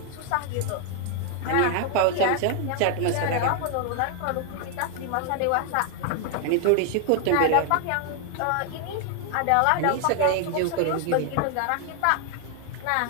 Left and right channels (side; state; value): both; different; correlation 0.00